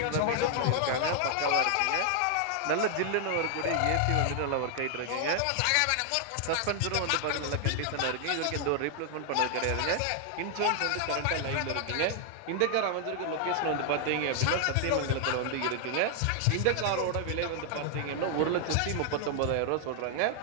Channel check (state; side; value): different; both; correlation 0.00